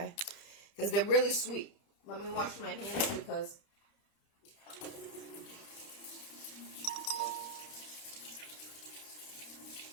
Because they're really sweet. Let me wash my hands because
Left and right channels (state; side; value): late; right; 30 ms